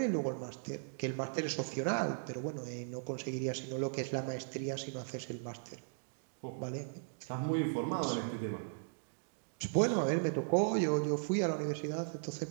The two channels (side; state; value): left; silent; digital silence